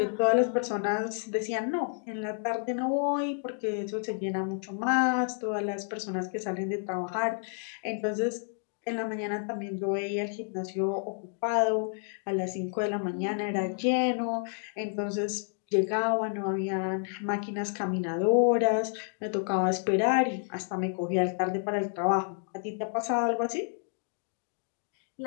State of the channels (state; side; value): silent; right; 58 dB below the other